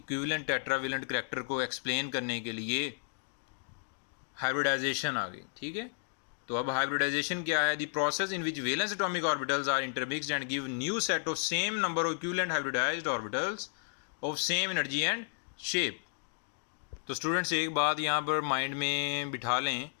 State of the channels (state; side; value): silent; right; digital silence